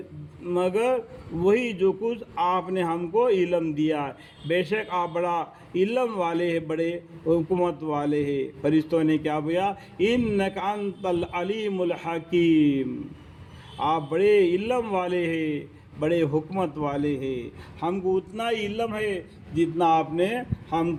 مگر وہی جو کچھ آپ نے ہم کو علم دیا ہے، بے شک آپ بڑا علم والے ہیں، بڑے حکمت والے ہیں۔ فرشتوں نے کیا بولا؟ انک انت العلیم الحکیم، آپ بڑے علم والے ہیں، بڑے حکمت والے ہیں، ہم کو اتنا ہی علم ہے جتنا آپ نے ہم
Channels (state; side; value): identical; both; correlation 1.00